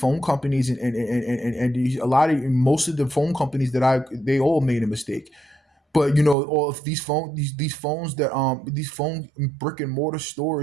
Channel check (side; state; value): left; drops out; at 6.4 s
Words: companies and a lot of most of the phone companies they all made a mistake. But all of these phones that these phone brick and mortar